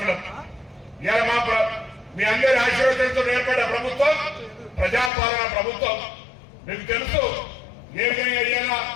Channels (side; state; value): right; drops out; at 5.1 s